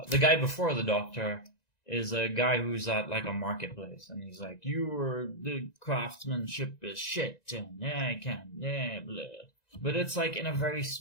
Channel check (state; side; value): late; right; 1.9 ms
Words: The guy before the doctor is a guy who's at like a marketplace, and he's like, the craftsmanship is shit, and I can't, blah. But it's like in a very